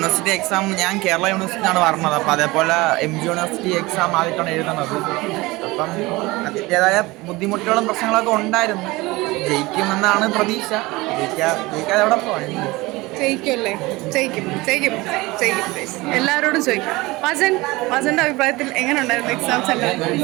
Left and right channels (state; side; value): quieter; left; 21.6 dB